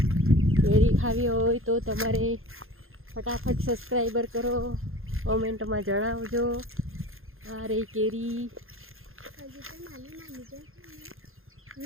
केरी खावी होय तो तमारे फटाफट सब्सक्राइबर करो, कमेंट में जणावजो। आ रही केरी,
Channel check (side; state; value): left; late; 0.61 ms